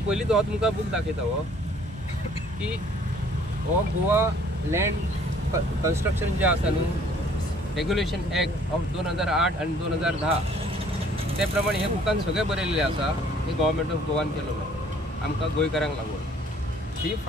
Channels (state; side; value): normal; both; correlation 0.58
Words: पयलींच हो तुमकां बूक दाखयता हो की हो गोवा लँड कन्स्ट्रक्शन जे आसा न्हू रेग्युलेशन एक्ट ऑफ 2008 आनी 2010 ते प्रमाणे हे बुकान सगळें बरयल्लें आसा। हे गव्हर्मेंट ऑफ गोवान केलेलो आमकां गोंयकारांक लागून। ही